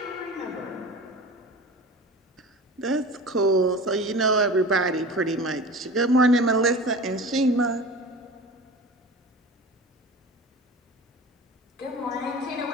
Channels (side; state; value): both; normal; correlation 0.35